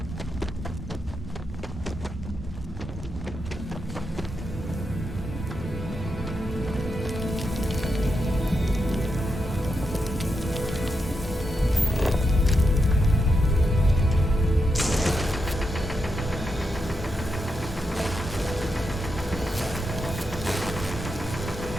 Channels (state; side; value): normal; both; correlation 0.85